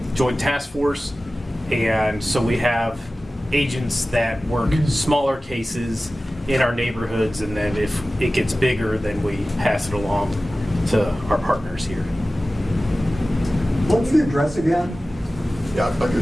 Joint Task Force. And so we have agents that work smaller cases in our neighborhoods. And then if it gets bigger, then we pass it along to our partners here. What's the address again? Yeah, I'll give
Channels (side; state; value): both; normal; correlation 0.96